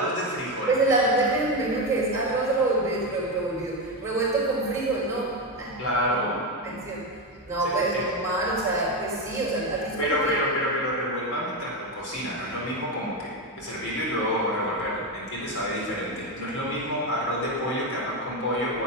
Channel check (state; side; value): normal; both; correlation 0.12